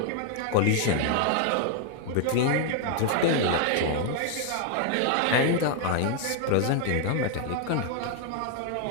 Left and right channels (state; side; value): different; both; correlation 0.00